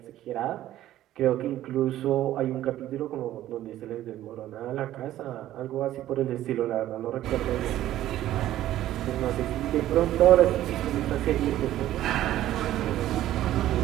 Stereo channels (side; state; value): left; quieter; 13.5 dB